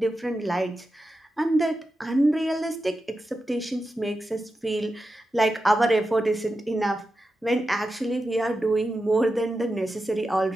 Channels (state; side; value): normal; both; correlation 0.90